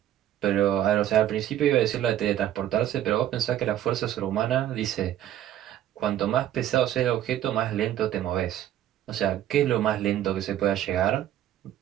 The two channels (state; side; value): quieter; left; 11.9 dB